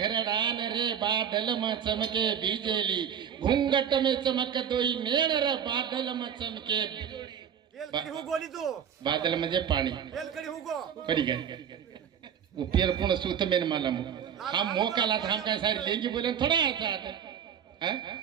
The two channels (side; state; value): left; quieter; 8.4 dB